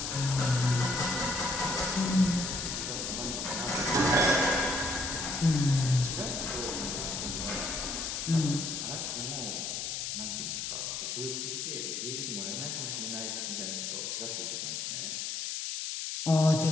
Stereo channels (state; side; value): noise; left; hiss, 3 dB below the sound